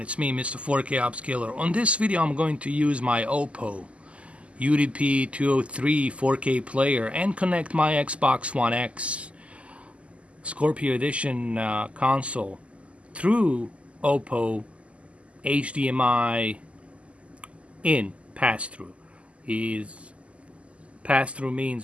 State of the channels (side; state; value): left; late; 0.059 ms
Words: It's me, Mr. 4K Upscaler. On this video, I'm going to use my Oppo UDP-203 4K player and connect my Xbox One X Scorpio Edition console through Oppo HDMI in pass-through. Pass-through